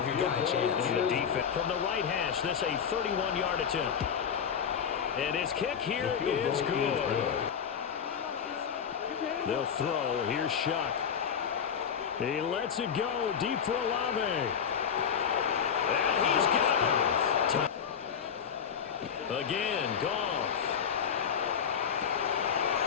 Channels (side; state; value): right; quieter; 7.5 dB